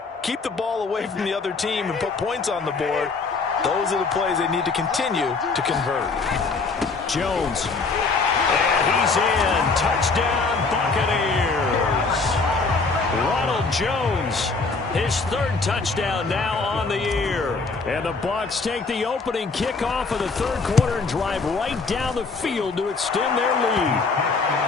keep the ball away from the other team, and put points on the board, those are the plays they need to continue to convert. Jones. And he's in. Touchdown, Buccaneers. Ronald Jones, his 3rd touchdown now on the year. And the Bucs take the opening kickoff of the 3rd quarter and drive right down the field to extend their lead.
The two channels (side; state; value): right; quieter; 4.2 dB